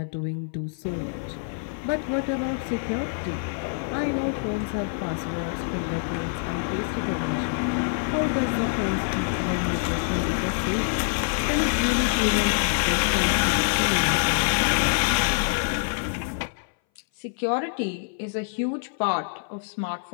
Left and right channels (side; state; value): right; silent; 59 dB below the other